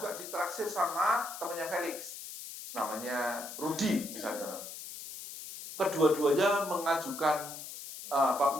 ditaksir sama temannya Felix. Namanya Rudi misalnya. Kedua-duanya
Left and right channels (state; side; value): noise; left; hiss, 11 dB below the sound